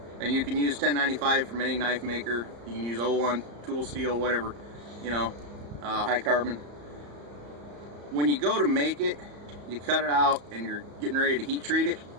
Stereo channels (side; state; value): left; late; 34 ms